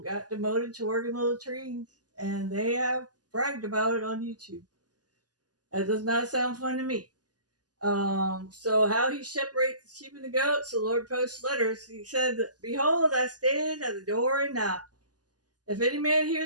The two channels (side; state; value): left; late; 0.68 ms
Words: got demoted to working little trees, and they have bragged about it on YouTube. That does not sound fun to me. So how he separates the sheep and the goats, the Lord posts letters. He said, "Behold, I stand at the door and knock. If any man